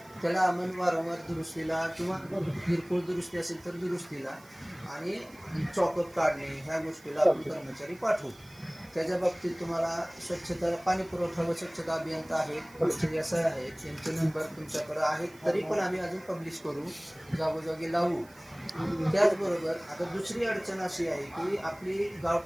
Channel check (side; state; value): right; noise; hiss, 25 dB below the sound